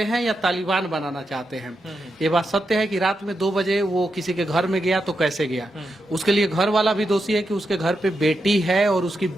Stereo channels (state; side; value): normal; both; correlation 0.86